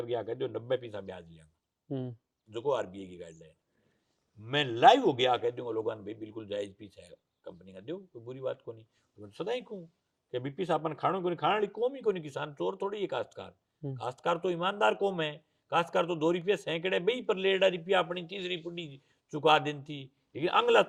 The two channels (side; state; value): both; identical; correlation 1.00